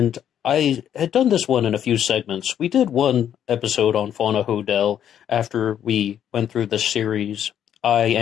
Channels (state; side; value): quieter; right; 9.8 dB